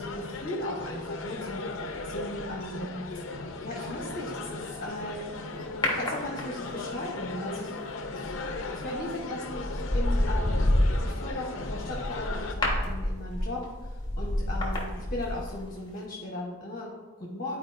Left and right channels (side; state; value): both; normal; correlation 0.57